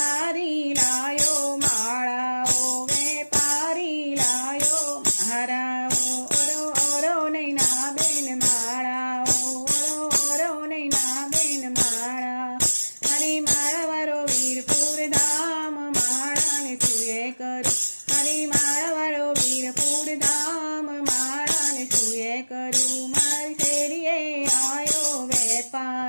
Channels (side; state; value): both; inverted; correlation -1.00